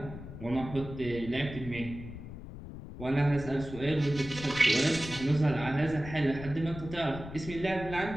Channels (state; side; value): noise; left; rumble, 12 dB below the sound